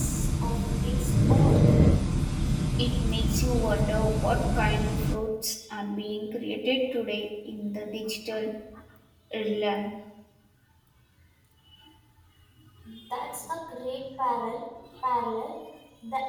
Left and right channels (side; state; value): both; identical; correlation 1.00